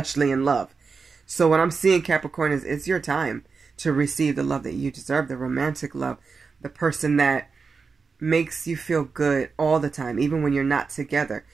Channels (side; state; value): left; quieter; 4.9 dB